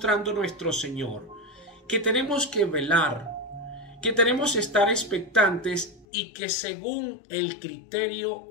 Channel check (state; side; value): drops out; right; at 6.1 s